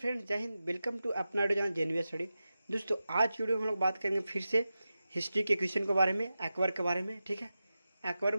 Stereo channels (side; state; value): both; inverted; correlation -0.92